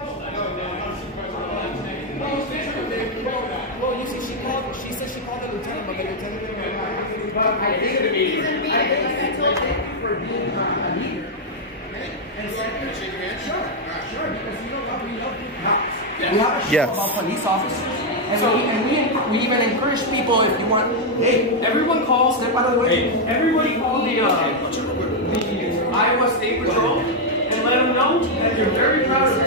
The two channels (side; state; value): both; normal; correlation 0.00